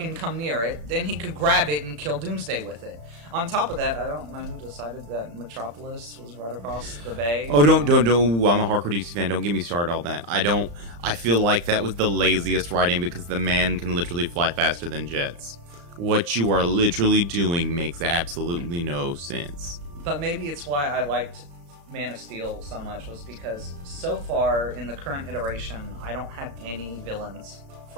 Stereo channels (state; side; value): late; left; 35 ms